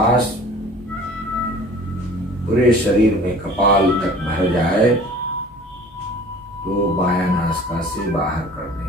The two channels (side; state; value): both; normal; correlation 0.46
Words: पूरे शरीर में कपाल तक भर जाए तो बायां नासिका से बाहर कर दें